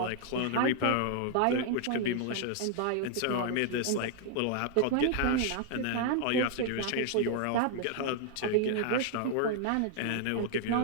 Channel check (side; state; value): both; different; correlation 0.00